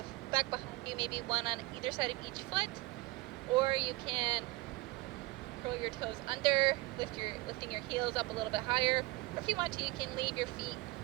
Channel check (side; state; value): left; quieter; 21.4 dB